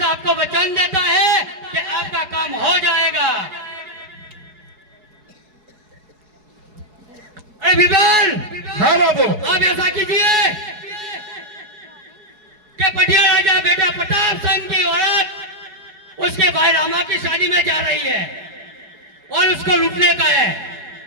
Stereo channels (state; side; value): late; left; 4.7 ms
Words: आपको वचन देता है कि आपका काम हो जाएगा। अरे बिरबल, હા બાબુ आप ऐसा कीजिए कि बढ़िया राजा बेटा प्रताप सिंह की औरत उसके भाई रामा की शादी में जा रही है और उसको लूटने का है,